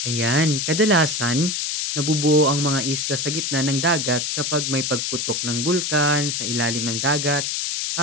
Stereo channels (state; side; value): noise; left; hiss, 1 dB below the sound